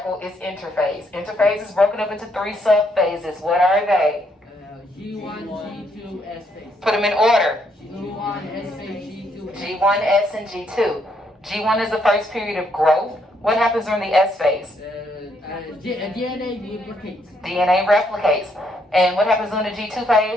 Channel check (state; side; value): normal; both; correlation 0.73